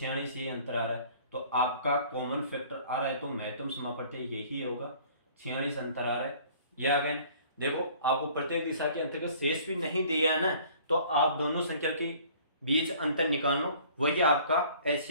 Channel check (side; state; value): both; inverted; correlation -0.52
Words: ये अंतर आ रहा है। तो आपका कॉमन फैक्टर आ रहा है, तो महत्तम समापत्ति यही होगा, 46 अंतर आ रहा है। यह अगेन देखो आपको प्रत्येक दिशा के अंतर्गत शेष भी नहीं दिया है ना, तो आप दोनों संख्या के बीच अंतर निकाल लो, वही आपका एच